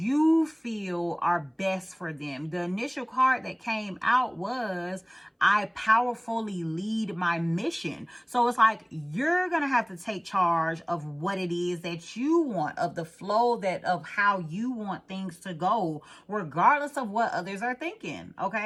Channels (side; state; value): both; identical; correlation 1.00